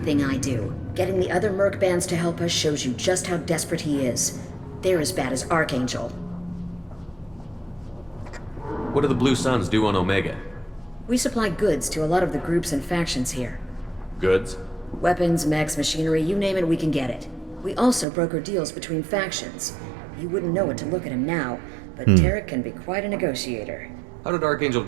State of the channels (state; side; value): drops out; left; at 18.1 s